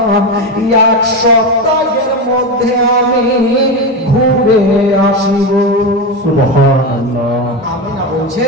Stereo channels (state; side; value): normal; both; correlation 0.16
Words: 1 সপ্তাহের মধ্যে আমি ঘুরে আসিব সুবহানাল্লাহ আমিনা বলছে